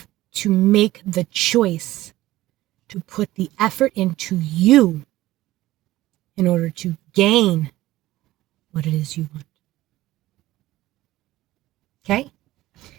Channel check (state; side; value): quieter; left; 16.5 dB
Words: to make the choice to put the effort into you in order to gain what it is you want. Okay?